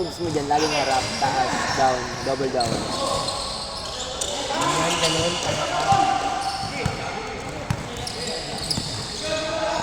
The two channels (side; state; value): both; identical; correlation 1.00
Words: mo dyan, laging harap, taas, down, double down. Ganun.